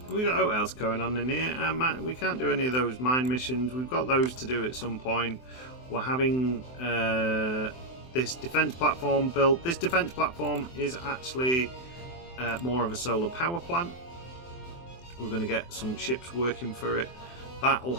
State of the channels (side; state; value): right; late; 23 ms